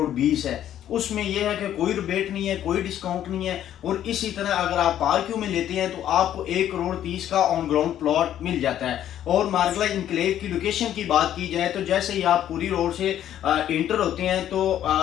है। उसमें यह है कि कोई रिबेट नहीं है, कोई डिस्काउंट नहीं है। और इसी तरह अगर आप पार्क्यू में लेते हैं तो आपको 1,30,00,000 का ऑन ग्राउंड प्लॉट मिल जाता है। और मार्गला इनक्लेव की लोकेशन की बात की जाए तो जैसे ही आप पूरी रोड से इंटर होते हैं तो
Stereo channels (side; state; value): right; quieter; 11.2 dB